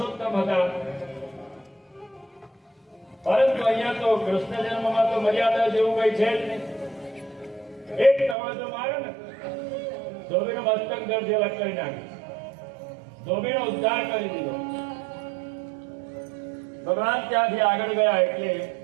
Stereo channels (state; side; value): drops out; left; at 8.3 s